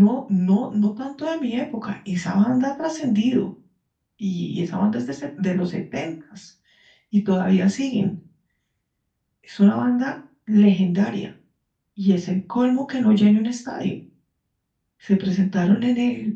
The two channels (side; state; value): both; identical; correlation 1.00